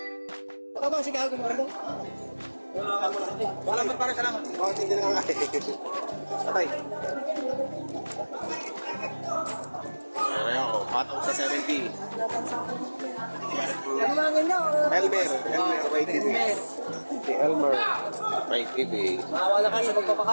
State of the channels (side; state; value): both; inverted; correlation -1.00